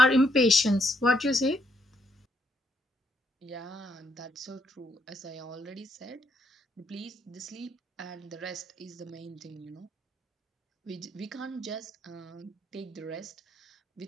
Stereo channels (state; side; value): normal; both; correlation 0.75